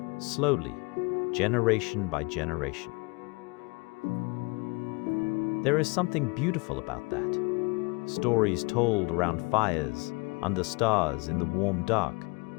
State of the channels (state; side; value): quieter; right; 28.8 dB